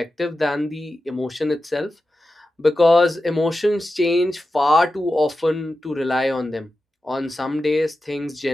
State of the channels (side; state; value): both; normal; correlation 0.92